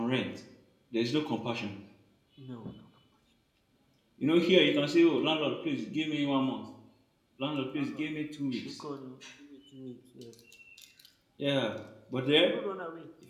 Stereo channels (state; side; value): identical; both; correlation 1.00